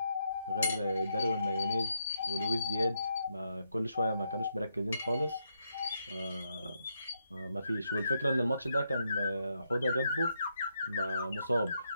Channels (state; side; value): inverted; both; correlation -0.80